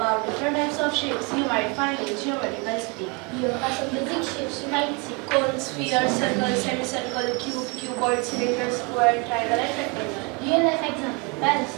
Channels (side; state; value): left; quieter; 29.5 dB